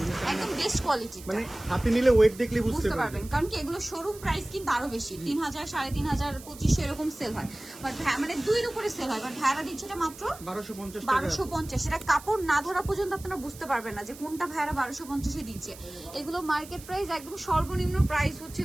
একদম বেস্ট কোয়ালিটি, মানে হাতে নিলে ওয়েট দেখলে বুঝতে পারবেন। কারণ কি এগুলো শোরুম প্রাইস কিন্তু আরো বেশি, 3000, 3500, 2500 এরকম সেল হয়, বাট মানে 2-এর উপরে সেল হয়, বাট ভাড়া দিচ্ছে এটা মাত্র 1250। এটা কাপড় না ধরা পর্যন্ত আপনারা বুঝতে পারবেন না যে কোনটা ভাড়া 1250 দিচ্ছে। এগুলো মার্কেট প্রাইস একদম সর্বনিম্ন প্রাইস হচ্ছে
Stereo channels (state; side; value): noise; right; hiss, 17 dB below the sound